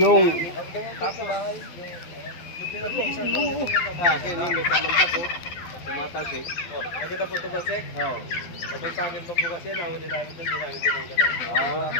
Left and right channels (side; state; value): right; late; 12 ms